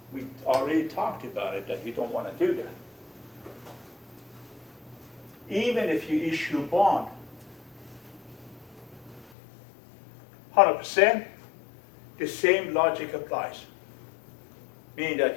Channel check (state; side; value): drops out; right; at 9.3 s